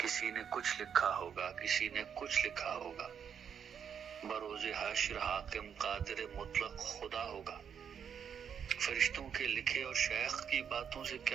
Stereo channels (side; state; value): left; quieter; 7.8 dB